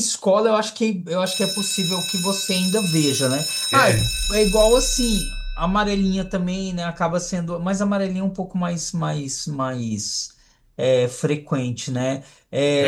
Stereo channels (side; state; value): both; identical; correlation 1.00